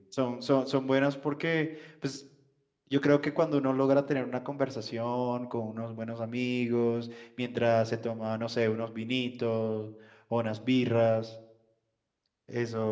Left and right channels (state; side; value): identical; both; correlation 1.00